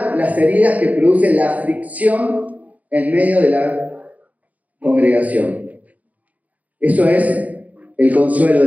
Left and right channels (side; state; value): left; late; 0.076 ms